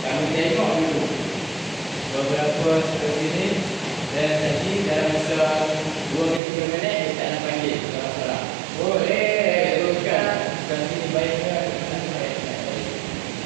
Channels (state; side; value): drops out; left; at 6.4 s